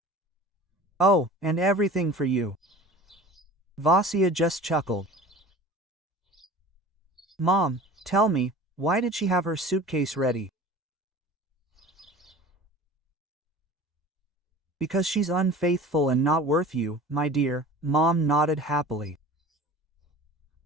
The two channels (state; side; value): normal; both; correlation 0.40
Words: Oh, and everything for you. Vasya just chuckled. Mom, tell me, why did she have her suitcase ready? Because she's unfaithful and not worth you, my dear, Mom nodded happily.